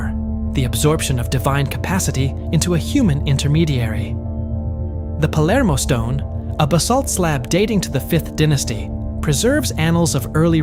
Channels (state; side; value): identical; both; correlation 1.00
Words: the absorption of divine capacity into a human intermediary. The Palermo stone, a basalt slab dating to the 5th dynasty, preserves annals of early